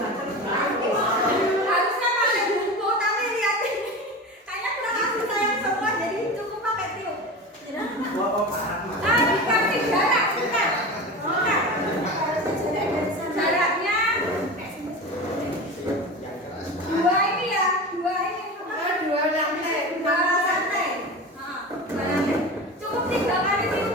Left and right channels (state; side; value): normal; both; correlation 0.29